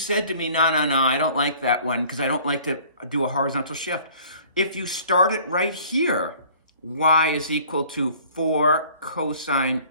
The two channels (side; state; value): both; inverted; correlation -0.52